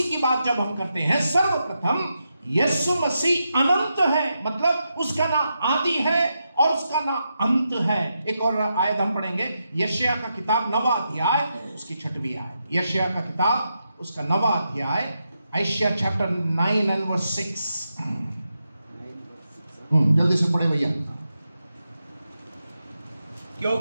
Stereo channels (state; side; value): inverted; both; correlation -0.86